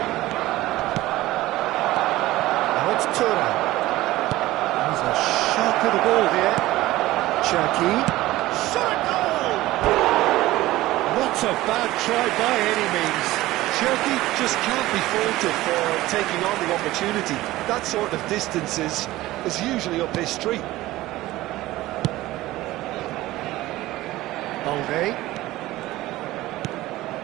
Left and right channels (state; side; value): quieter; left; 17.1 dB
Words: Now it's Thuram. He's a sharp little ball here. Cherki. Shot a goal! Not a bad try by any means. Cherki just can't be faulted for taking on the opportunity. That sort of distance is usually up his street. Balde.